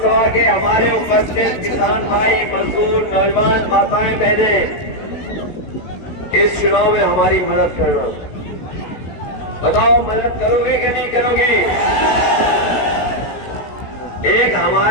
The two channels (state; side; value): late; right; 16 ms